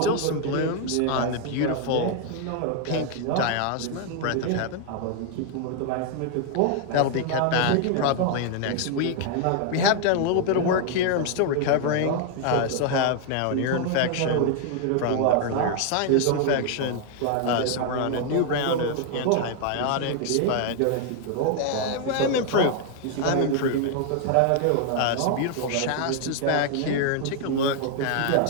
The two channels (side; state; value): both; different; correlation 0.00